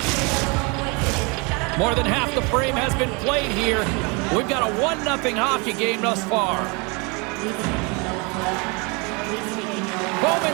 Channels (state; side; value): quieter; left; 30.3 dB